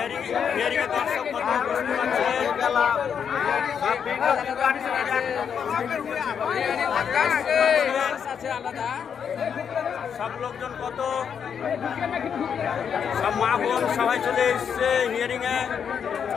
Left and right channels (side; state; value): right; quieter; 7.4 dB